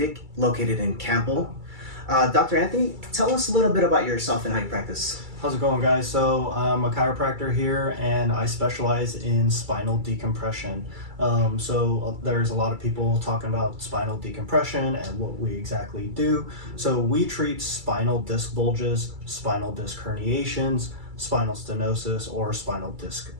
located in Campbell. Dr. Anthony, tell us a little bit about yourself and how you practice. How's it going, guys? So I'm a chiropractor here and I specialize in spinal decompression. There's a lot of people talking about spinal decompression and what we exactly do. So we treat spinal disc bulges, spinal disc herniations, spinal stenosis, or spinal disc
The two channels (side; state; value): left; late; 2.3 ms